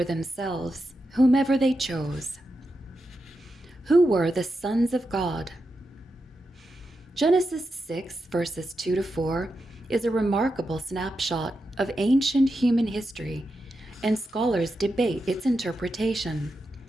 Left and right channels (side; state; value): both; normal; correlation 0.88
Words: themselves, whomever they chose. Who were the sons of God? Genesis 6, verses 2 to 4 is a remarkable snapshot of ancient human history, and scholars debate its interpretation.